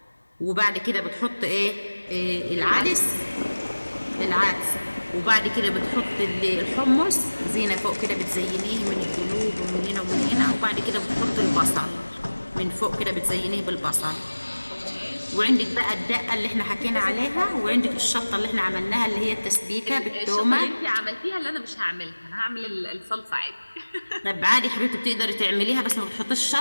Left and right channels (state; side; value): inverted; both; correlation -1.00